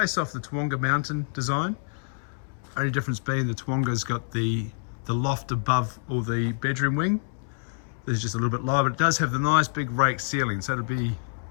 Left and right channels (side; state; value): right; silent; digital silence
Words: off the Toowoomba mountain design. Only difference being the Toowoomba's got the loft above or the bedroom wing. This is just a little bit lower, but it does have the nice big rake ceiling. So it'll be